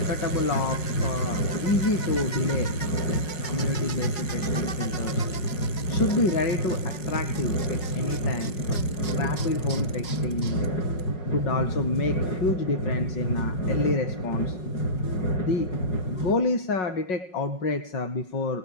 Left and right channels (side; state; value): right; late; 5.5 ms